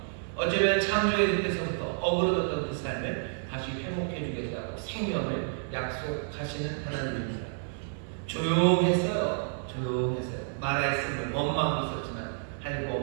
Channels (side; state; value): left; silent; 58 dB below the other